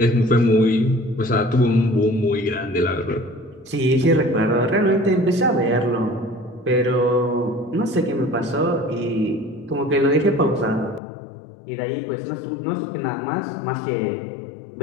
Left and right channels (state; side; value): drops out; right; at 11.0 s